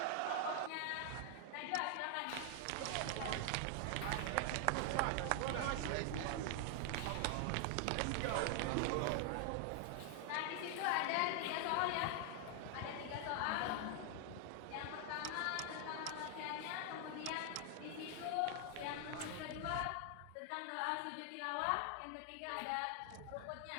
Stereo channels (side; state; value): both; different; correlation 0.00